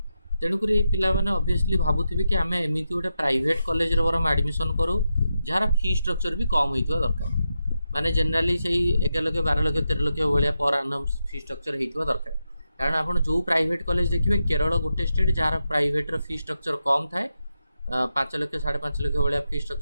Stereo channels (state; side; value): inverted; both; correlation -0.87